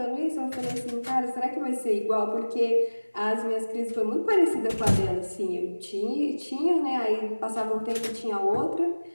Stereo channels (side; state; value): both; inverted; correlation -1.00